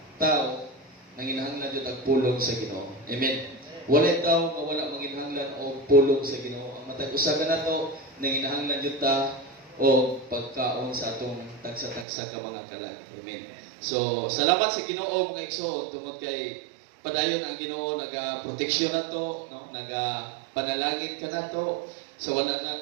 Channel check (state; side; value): drops out; left; at 12.1 s